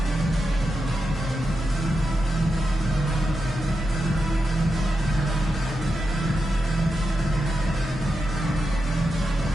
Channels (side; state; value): both; normal; correlation 0.88